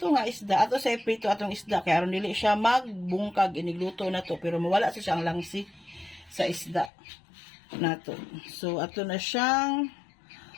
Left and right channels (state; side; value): drops out; right; at 6.9 s